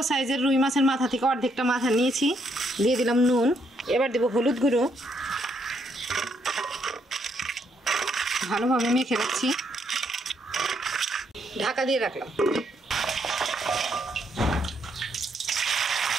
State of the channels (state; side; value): normal; both; correlation 0.74